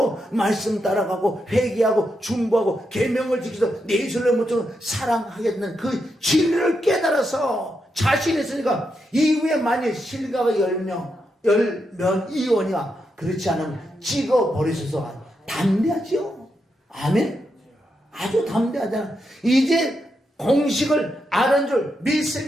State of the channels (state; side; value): normal; both; correlation 0.83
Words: 말씀 따라가고 회개하고 중보하고 계명을 지켜서 내 이슬로 모처럼 사랑하겠다는 그 진리를 깨달아서 자신 있으니까 이후에 만일 실과가 열면 이원이야. 그렇지 않으면 찍어버리셔서 담대하죠. 아멘. 아주 담대하잖아. 이제 공식을 아는 줄